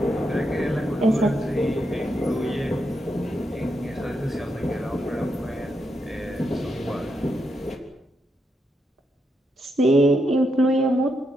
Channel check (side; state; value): both; normal; correlation 0.82